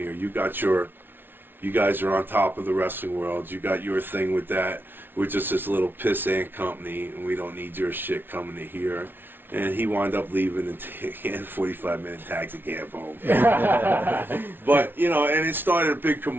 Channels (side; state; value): left; late; 0.10 ms